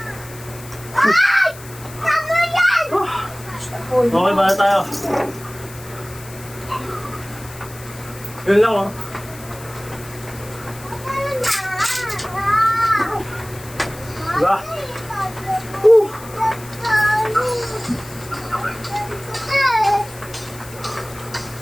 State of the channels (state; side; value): noise; left; hiss, 18 dB below the sound